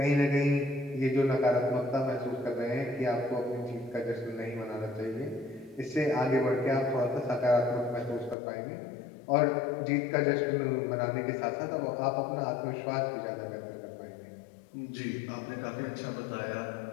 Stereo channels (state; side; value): drops out; right; at 8.3 s